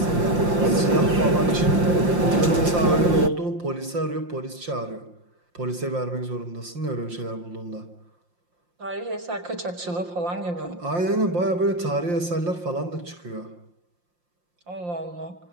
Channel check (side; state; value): left; late; 5.7 ms